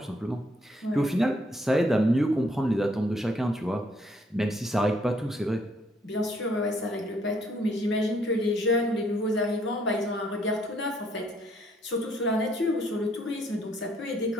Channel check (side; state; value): both; normal; correlation 0.68